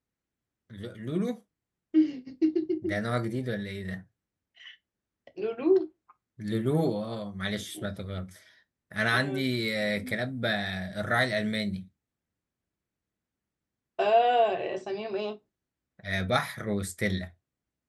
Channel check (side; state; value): both; identical; correlation 1.00